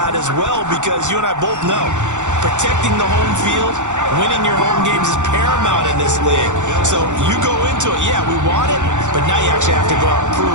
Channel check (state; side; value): late; left; 0.85 ms